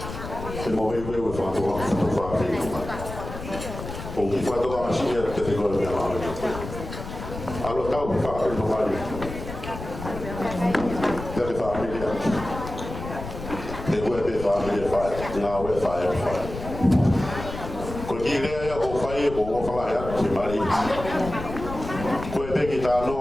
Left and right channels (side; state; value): left; noise; rumble, 9 dB below the sound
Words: Semua wewe fatu Famili. Porque fatu a machine que te gosta de lá. Alô tá o Famili no vale. Deve Famili. Deve Famili faz, não é faz. Porque ele é o pai o falar é Timari. Coe bem tá